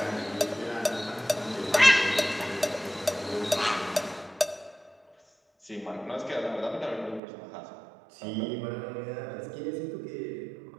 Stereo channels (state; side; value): drops out; left; at 7.2 s